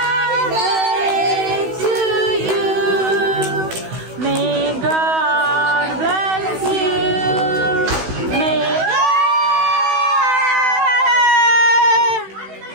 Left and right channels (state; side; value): late; left; 16 ms